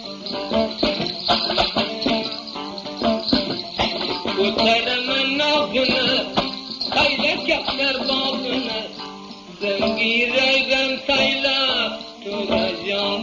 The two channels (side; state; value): both; identical; correlation 1.00